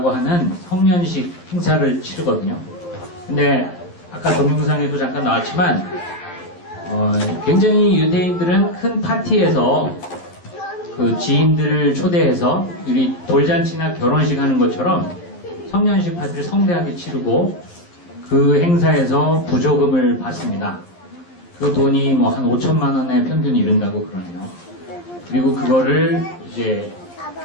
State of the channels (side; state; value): right; late; 11 ms